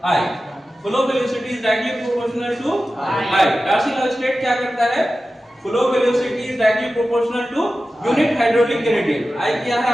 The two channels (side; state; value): both; normal; correlation 0.94